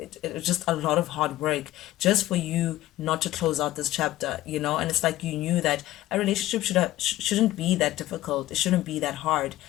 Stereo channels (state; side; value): quieter; right; 15.5 dB